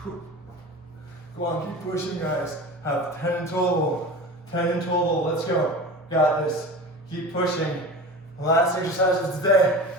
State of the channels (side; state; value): both; normal; correlation 0.33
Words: Come on, keep pushing, guys. Have 10 in total. 10 in total. Let's go. Got this. Keep pushing. Last exercise of today.